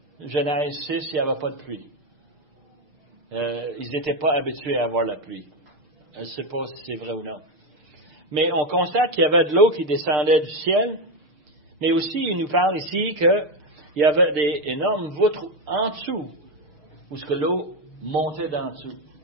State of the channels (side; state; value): left; late; 6.7 ms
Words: Genèse 6, il n'y avait pas de pluie. Ils n'étaient pas habitués à avoir la pluie. Je ne sais pas si c'est vrai ou non. Mais on constate qu'il y avait de l'eau qui descendait du ciel, mais aussi il nous parle ici qu'il y avait des énormes voûtes en dessous, où ce que l'eau montait d'en dessous.